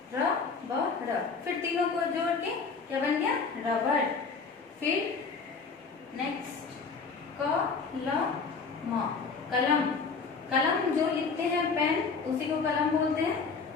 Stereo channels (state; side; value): quieter; right; 4.9 dB